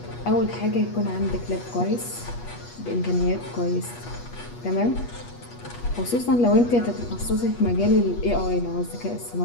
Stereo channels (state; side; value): late; right; 8.3 ms